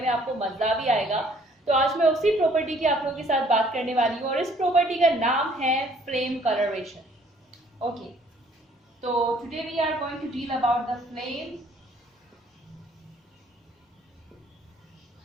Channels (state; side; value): normal; both; correlation 0.60